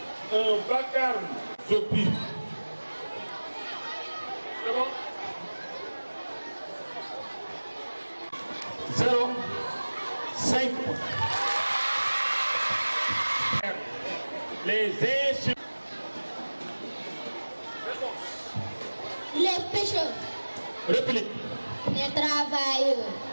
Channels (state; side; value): inverted; both; correlation -1.00